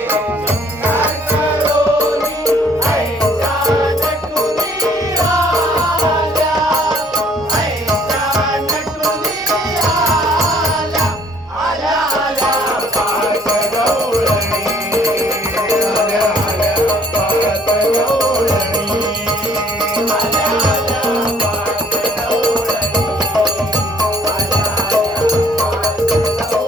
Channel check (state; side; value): normal; both; correlation 0.59